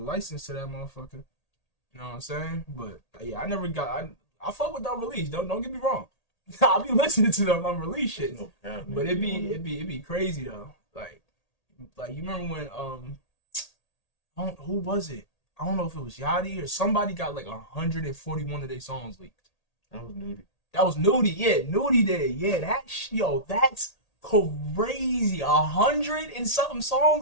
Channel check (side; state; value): right; late; 1.8 ms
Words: license to that motherfucker. You know what I'm saying? But yeah, I fuck with the unreleased. Don't get me wrong. I'll be listening to the unreleased shit. But it'd be crazy though. Like you remember when who was it? I don't know if it was Yachty or somebody got like 141 of their songs leaked. That was Nudie. That was Nudie, yeah. Nudie did, yeah. That's crazy. 100 and something